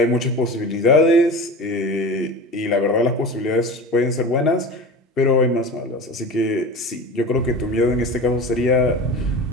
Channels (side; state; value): both; normal; correlation 0.32